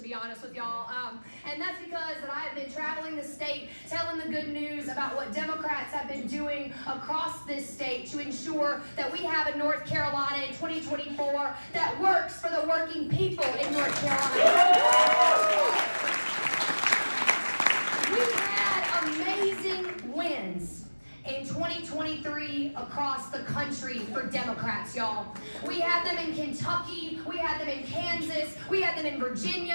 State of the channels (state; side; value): inverted; both; correlation -1.00